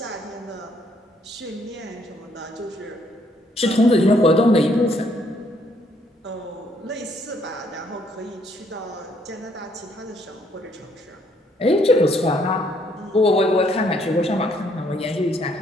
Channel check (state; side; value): normal; both; correlation 0.68